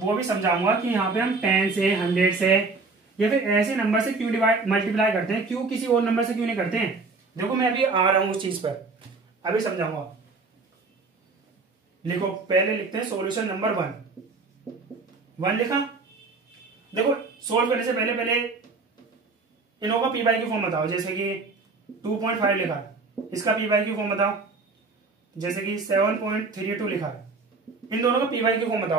भी समझाऊंगा कि यहाँ पे हम 10 से 100 से या फिर ऐसे नंबर से क्यों मल्टीप्लाई करते हैं, क्यों किसी और नंबर से क्यों नहीं करते हैं। देखो मैं अभी आ रहा हूं उस चीज पर, अभी समझाऊंगा। लिखो, पहले लिखते हैं सॉल्यूशन नंबर 1 लिखा। देखो सोल्व करने से पहले इनों का पी बाई क्यू फॉर्म बताओ। जैसे कि 2.5 लिखा है, इसका पी बाई क्यू फॉर्म बताओ। जैसे कि 7.32 लिखा है, इन दोनों का पी बाई क्यू फॉर्म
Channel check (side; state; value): left; quieter; 4.0 dB